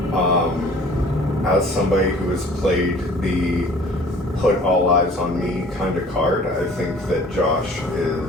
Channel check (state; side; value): normal; both; correlation 0.49